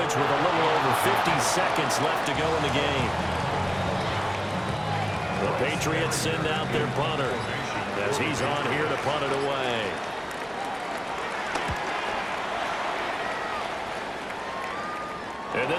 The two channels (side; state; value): both; identical; correlation 1.00